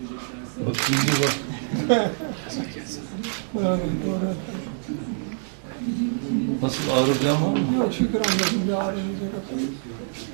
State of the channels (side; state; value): left; silent; digital silence